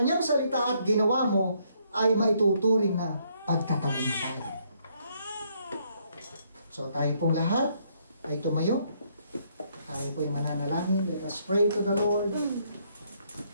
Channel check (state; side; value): inverted; both; correlation -0.70